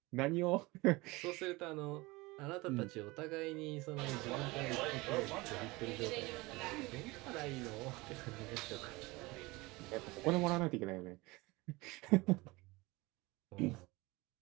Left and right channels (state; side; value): quieter; left; 22.8 dB